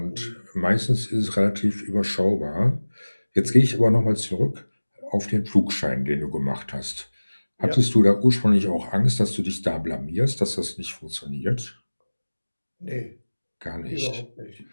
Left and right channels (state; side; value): inverted; both; correlation -1.00